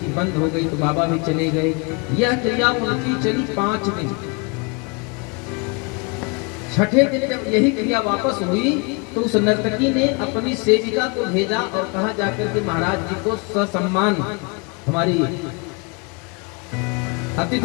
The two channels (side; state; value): right; quieter; 31.5 dB